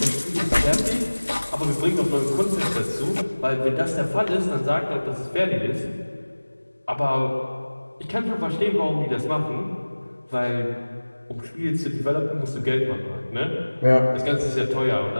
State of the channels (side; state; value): both; inverted; correlation -1.00